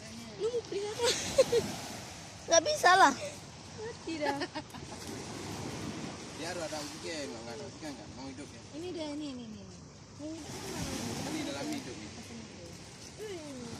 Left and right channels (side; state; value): both; identical; correlation 1.00